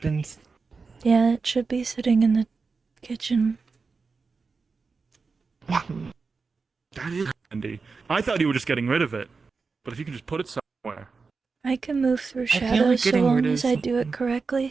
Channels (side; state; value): left; quieter; 4.6 dB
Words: Yeah, it should be sitting in the kitchen. That is handy. I thought you were just getting rid of it. But if you can just put it somewhere. I can move through feel like shadows so getting long rid of as I do it